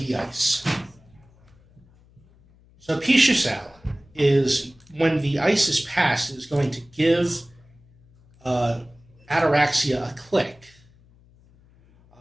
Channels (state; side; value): noise; left; hum, 29 dB below the sound